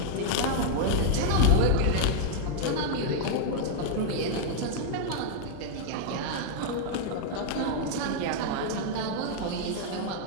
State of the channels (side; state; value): both; different; correlation -0.01